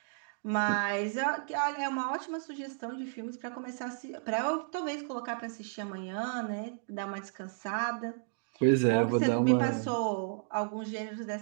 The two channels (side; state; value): left; silent; digital silence